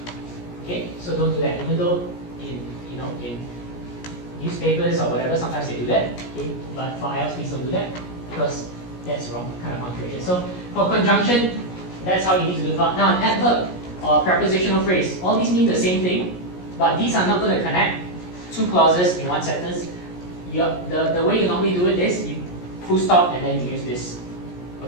Okay, so don't do that. Even though in newspapers or whatever, sometimes they do that. Okay, but for IELTS, please don't do that because that's wrong kind of punctuation. So for conjunction, that's how you need to do it. Now an adverb or prepositional phrase, all these mean the same thing, but these are not going to connect two clauses in one sentence. The way you normally do it is you full stop and then you use this.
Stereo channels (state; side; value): late; right; 17 ms